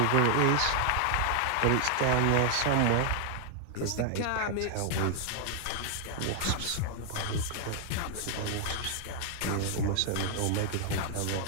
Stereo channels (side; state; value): both; different; correlation 0.00